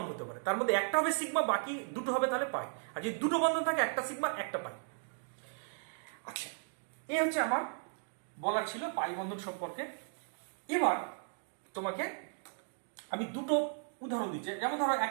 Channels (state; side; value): silent; left; digital silence